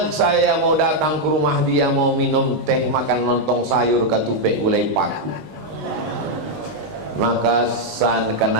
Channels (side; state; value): left; late; 19 ms